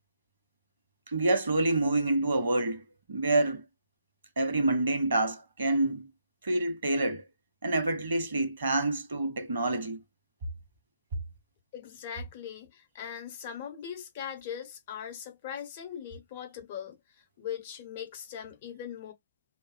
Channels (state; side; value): inverted; both; correlation -0.77